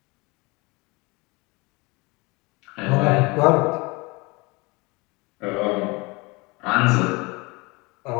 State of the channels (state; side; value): quieter; right; 25.9 dB